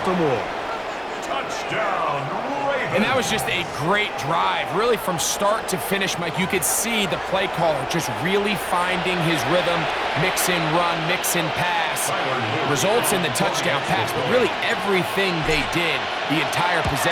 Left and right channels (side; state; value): both; identical; correlation 1.00